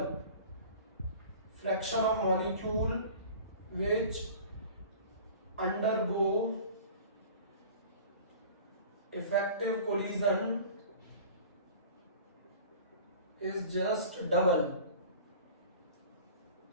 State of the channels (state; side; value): inverted; both; correlation -0.42